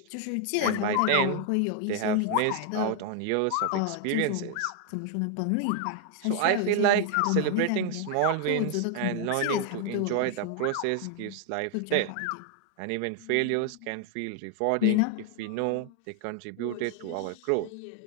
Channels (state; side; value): different; both; correlation 0.01